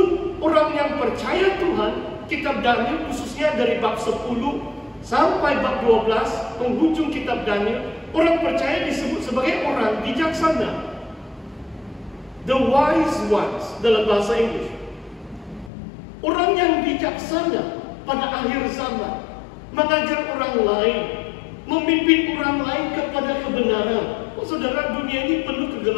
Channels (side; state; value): right; drops out; at 15.7 s